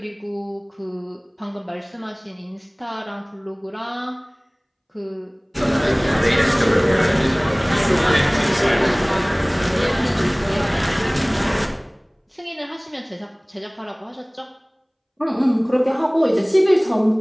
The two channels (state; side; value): identical; both; correlation 1.00